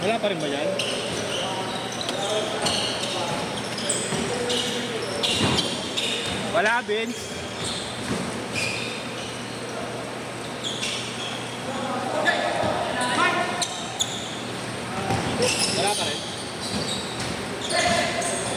Wala pa rin ba yan? Wala, Vince. Wala pa rin.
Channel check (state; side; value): identical; both; correlation 1.00